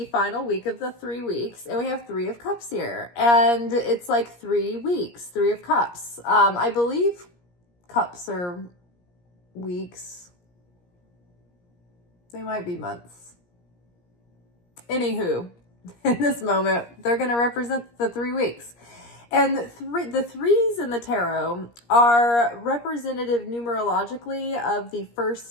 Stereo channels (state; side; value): late; right; 17 ms